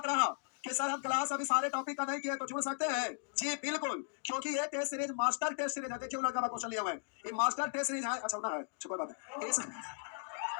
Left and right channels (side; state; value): right; silent; digital silence